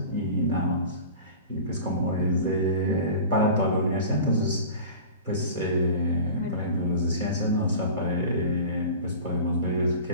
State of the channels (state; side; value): inverted; both; correlation -0.37